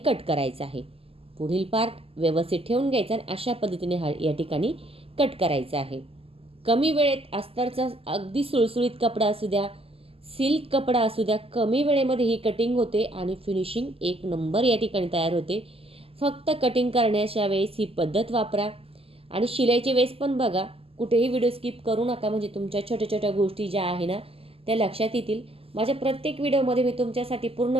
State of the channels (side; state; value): left; late; 0.28 ms